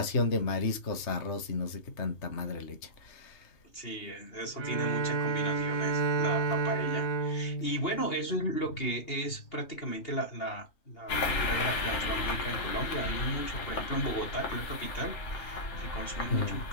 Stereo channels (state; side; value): late; right; 2.8 ms